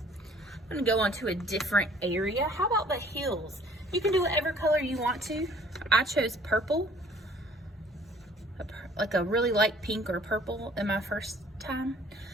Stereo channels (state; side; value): normal; both; correlation 0.56